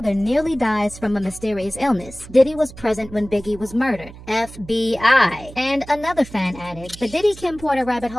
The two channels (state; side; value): noise; right; hum, 17 dB below the sound